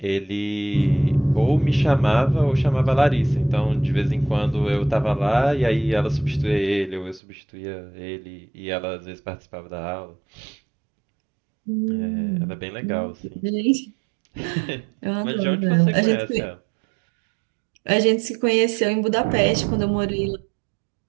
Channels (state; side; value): drops out; left; at 7.2 s